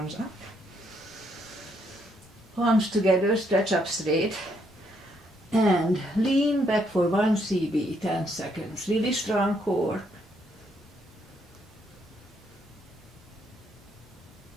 up. Palms together, stretch up straight. And lean back for 1 CB, 10 seconds. Really strong core.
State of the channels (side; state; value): both; normal; correlation 0.73